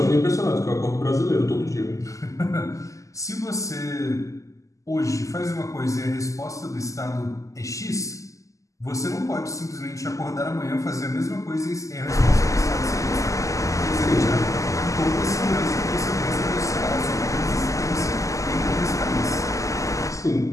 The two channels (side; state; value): right; late; 0.16 ms